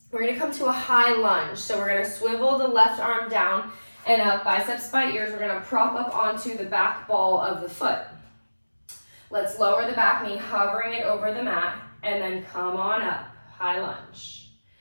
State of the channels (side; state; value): both; inverted; correlation -1.00